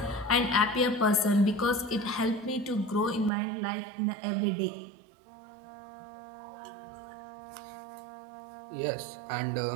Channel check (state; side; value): drops out; left; at 3.3 s